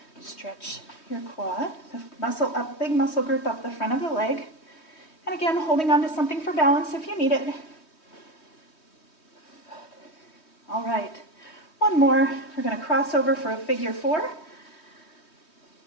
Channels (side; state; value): right; late; 3.2 ms